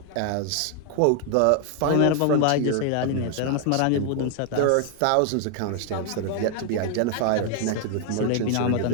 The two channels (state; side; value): different; both; correlation 0.00